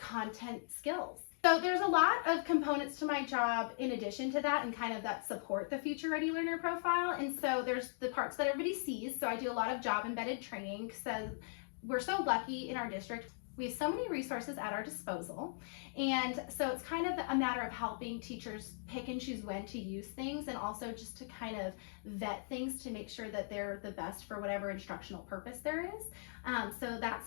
skills. So there's a lot of components to my job in addition to that and kind of that support the future ready learner profile. And so there's the parts that everybody sees. So I do a lot of job embedded training. So we're so lucky in our district. We have so many resources at our disposal. And so it's kind of a matter of helping teachers pick and choose when to use things, and also just to kind of vet things to make sure that they're the best for whatever instructional purpose there is. So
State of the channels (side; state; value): right; silent; digital silence